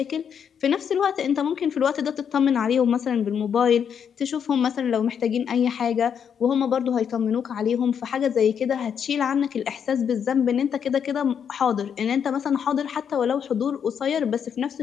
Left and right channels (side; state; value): right; quieter; 7.7 dB